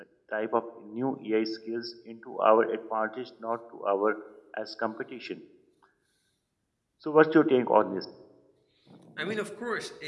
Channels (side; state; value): both; identical; correlation 1.00